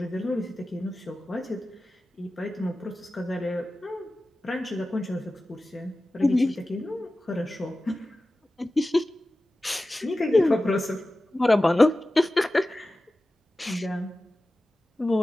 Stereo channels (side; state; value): both; normal; correlation 0.95